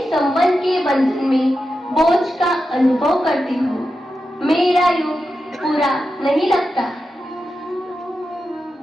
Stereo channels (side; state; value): both; normal; correlation 0.90